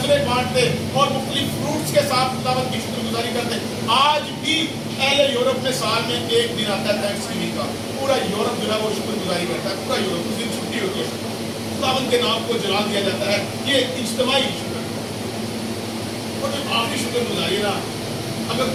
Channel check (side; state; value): both; identical; correlation 1.00